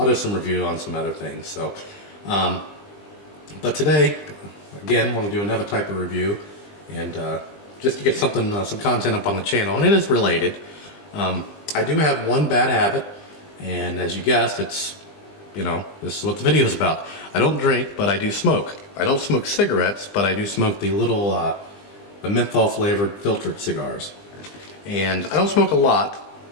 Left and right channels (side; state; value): right; late; 20 ms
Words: do some review on some other things. So, but today, again, I want to do another type of review. And just to get something, some content up on the channel, and it is related. I do have one bad habit, and as you guessed, it's, this is what the video is about. I don't drink, but I do smoke. I don't smoke cigarettes, but I do smoke the little, the menthol flavored filtered cigars. And I don't smoke a lot.